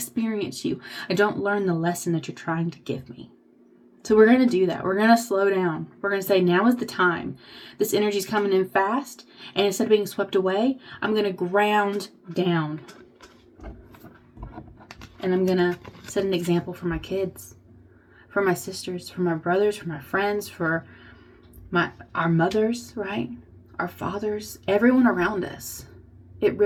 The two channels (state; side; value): identical; both; correlation 1.00